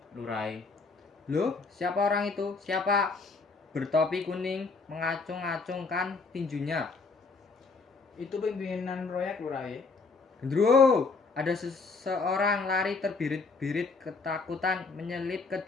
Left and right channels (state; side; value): quieter; right; 4.2 dB